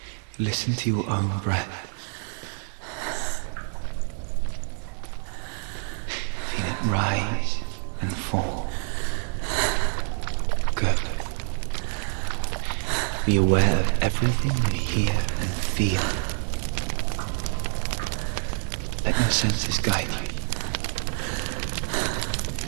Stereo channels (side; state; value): left; silent; 60 dB below the other